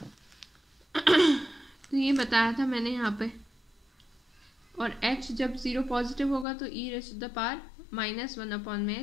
तो ये बताया था मैंने यहाँ पे, और h जब 0 पॉजिटिव होगा तो e raise to the power minus 1 upon में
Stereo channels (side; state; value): right; drops out; at 6.5 s